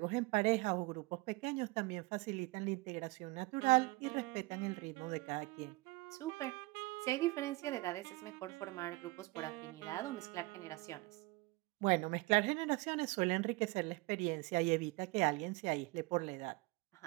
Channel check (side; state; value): left; quieter; 22.5 dB